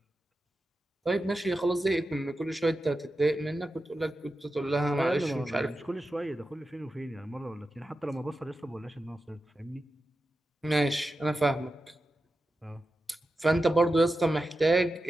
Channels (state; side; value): normal; both; correlation 0.91